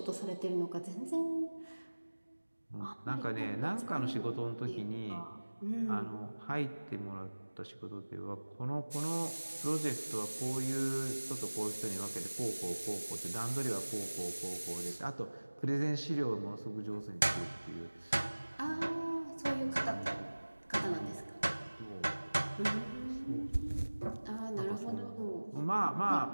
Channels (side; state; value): both; inverted; correlation -1.00